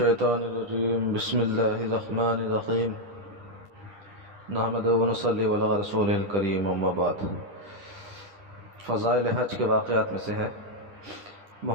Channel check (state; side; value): late; left; 10 ms